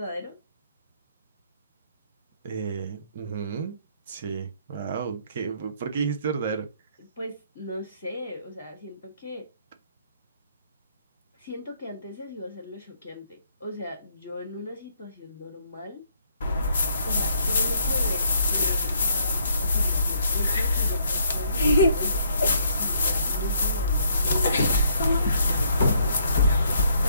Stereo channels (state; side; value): inverted; both; correlation -0.69